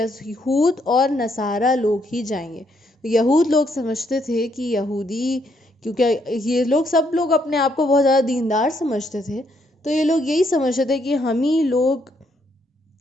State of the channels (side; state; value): both; normal; correlation 0.73